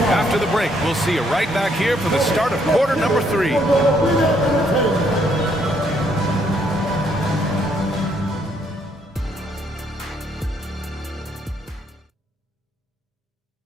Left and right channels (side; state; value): both; normal; correlation 0.70